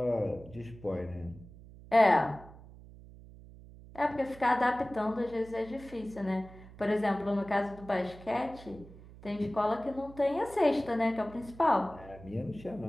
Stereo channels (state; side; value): noise; right; hum, 19 dB below the sound